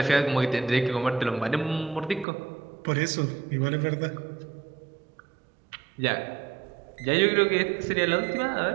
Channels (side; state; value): left; drops out; at 2.2 s